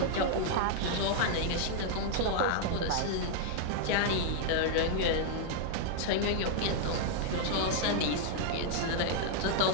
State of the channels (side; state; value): both; different; correlation 0.00